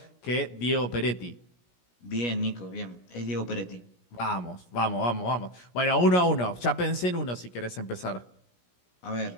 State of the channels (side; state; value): right; late; 17 ms